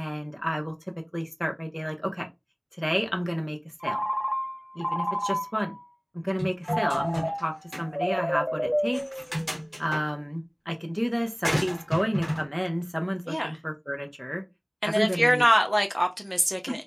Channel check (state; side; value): identical; both; correlation 1.00